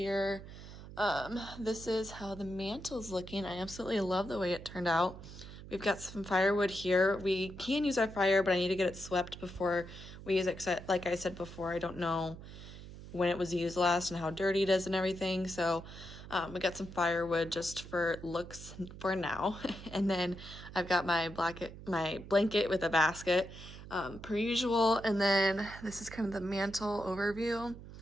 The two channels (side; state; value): right; noise; hum, 14 dB below the sound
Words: This is how the mantle's looking. I absolutely love the way it turned out. We've got some firewood here. We can use our fire, but I need to get it swept before we use it. Like I said before, I don't know when it was used last and how dirty it is and everything. So we got some firewood just for looks for now. And then I've got my blanket with a basket, per usual. And then this is kind of the mantle overview.